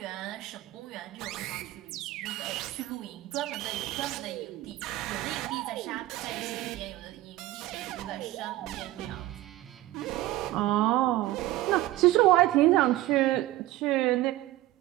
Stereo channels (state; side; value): quieter; left; 16.4 dB